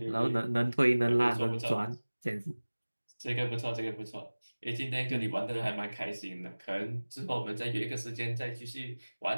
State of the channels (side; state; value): both; inverted; correlation -1.00